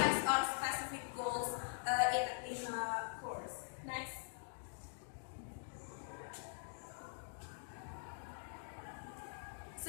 on specific goals in a course. Next.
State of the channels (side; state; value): right; silent; digital silence